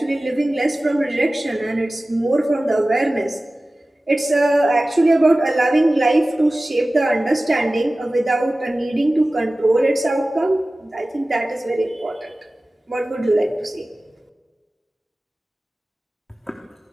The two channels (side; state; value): both; normal; correlation 0.97